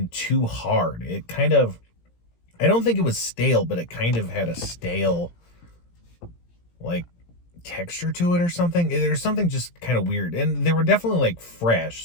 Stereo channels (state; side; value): late; right; 17 ms